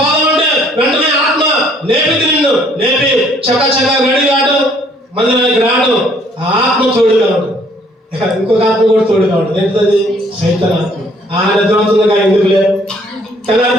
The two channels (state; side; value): normal; both; correlation 0.62